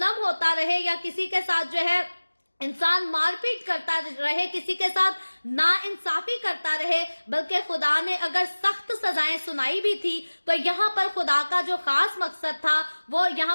ہوتا رہے یا کسی کے ساتھ جو ہے انسان مار پیٹ کرتا رہے، کسی کے ساتھ نا انصافی کرتا رہے، بلکہ خدا نے اگر سخت سزائیں سنائی بھی تھی تو یہاں پر خدا کا جو خاص مقصد تھا وہ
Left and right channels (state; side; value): inverted; both; correlation -1.00